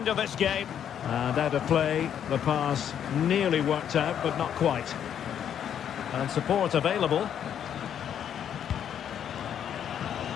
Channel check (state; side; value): quieter; right; 9.2 dB